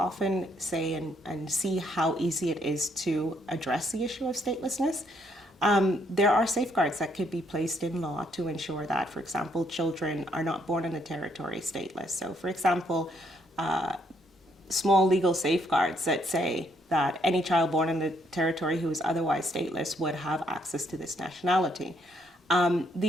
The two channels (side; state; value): both; normal; correlation 0.70